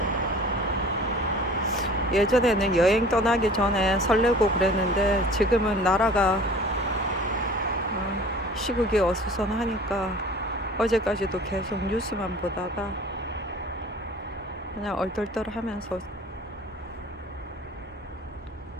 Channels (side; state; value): both; normal; correlation 0.45